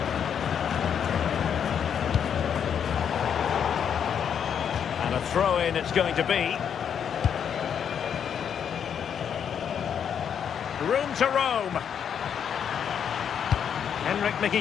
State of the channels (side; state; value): right; quieter; 8.1 dB